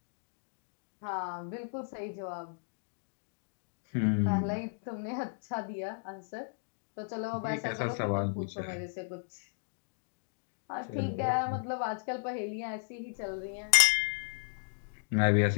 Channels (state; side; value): silent; right; digital silence